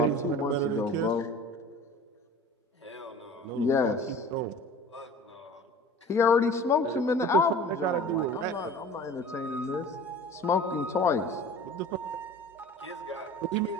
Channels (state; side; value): normal; both; correlation 0.42